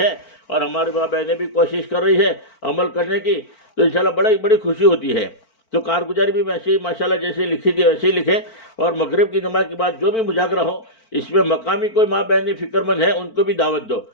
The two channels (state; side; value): late; right; 4.5 ms